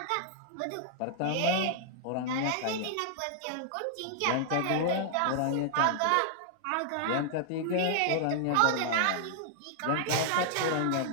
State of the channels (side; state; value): both; different; correlation -0.01